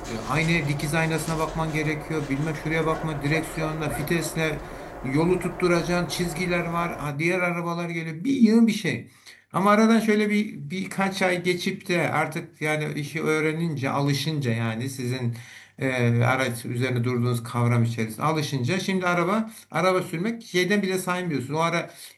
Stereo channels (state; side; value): identical; both; correlation 1.00